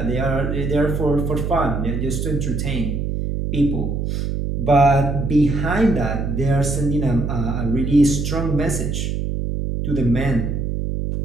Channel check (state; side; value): noise; right; hum, 2 dB below the sound